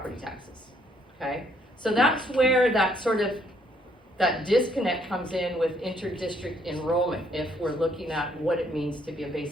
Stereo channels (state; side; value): normal; both; correlation 0.68